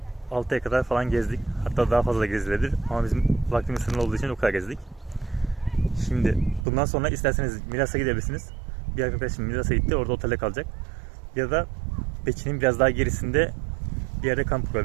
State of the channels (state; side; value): drops out; left; at 6.7 s